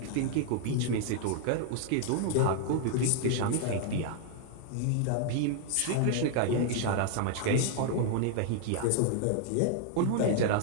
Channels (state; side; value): different; both; correlation 0.00